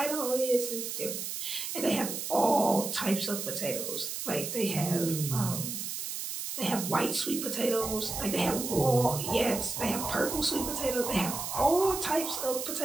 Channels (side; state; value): right; noise; hiss, 5 dB below the sound